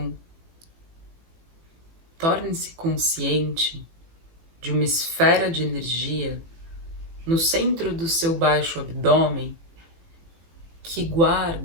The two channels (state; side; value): late; left; 18 ms